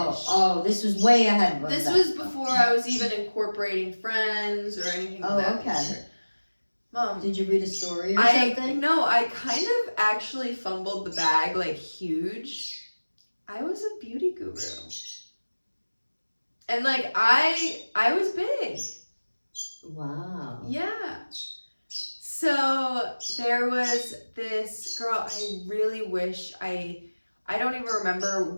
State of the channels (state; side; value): inverted; both; correlation -1.00